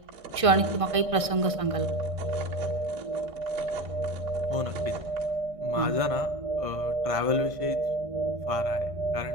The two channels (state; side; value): late; left; 1.6 ms